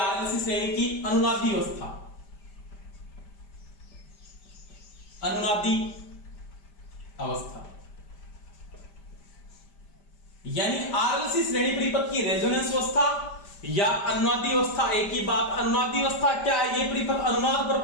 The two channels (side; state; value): right; late; 5.1 ms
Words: श्रेणी की, अनुनादी अवस्था। अनुनादी अवस्था यानी RLC श्रेणी परिपथ की रेजोनेंस अवस्था या अनुनादी अवस्था एक ही बात। अनुनादी अवस्था क्या है, ये परिपथ अनुनाद पर